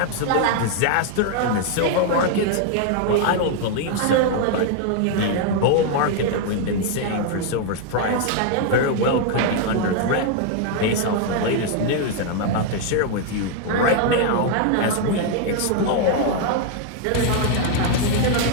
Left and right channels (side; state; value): both; different; correlation 0.00